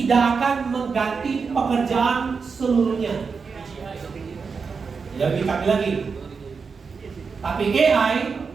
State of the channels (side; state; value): left; quieter; 5.3 dB